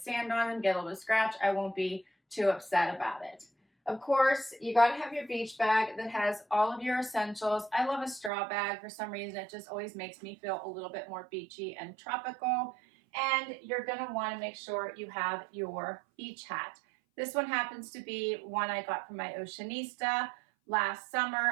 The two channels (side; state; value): left; drops out; at 8.3 s